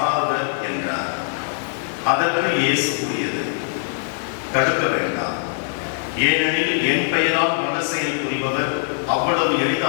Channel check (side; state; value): right; silent; digital silence